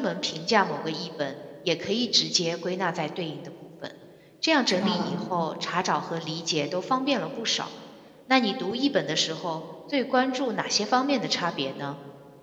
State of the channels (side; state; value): both; identical; correlation 1.00